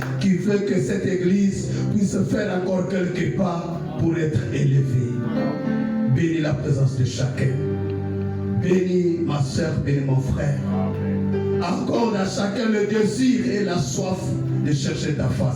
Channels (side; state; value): both; identical; correlation 1.00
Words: qui veut que cette église puisse faire encore quelques pas pour être élevée. Bénis la présence de chacun. Bénis ma soeur, bénis mon frère. Accorde à chacun le désir et la soif de chercher ta